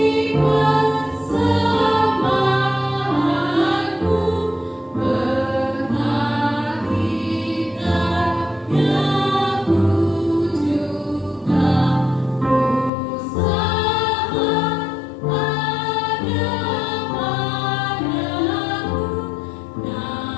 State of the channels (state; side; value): drops out; right; at 12.9 s